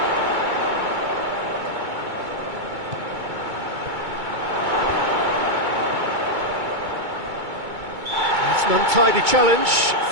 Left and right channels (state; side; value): late; left; 2.2 ms